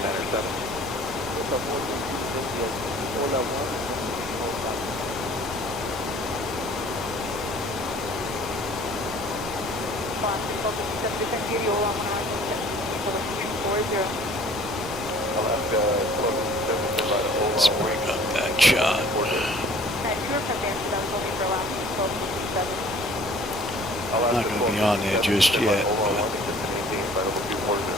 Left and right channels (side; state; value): both; normal; correlation 0.52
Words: Alaska, Let's bring up that shot. I'm not going to be on there just yet.